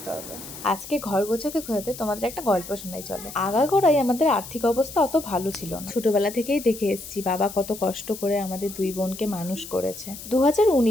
হবে। আজকে ঘর গোছাতে গোছাতে তোমাদের একটা গল্প শোনাই চলো। আগাগোড়াই আমাদের আর্থিক অবস্থা অত ভালো ছিল না। ছোটবেলা থেকেই দেখে এসেছি বাবা কত কষ্ট করে আমাদের দুই বোনকে মানুষ করেছে।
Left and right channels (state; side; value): noise; left; hiss, 13 dB below the sound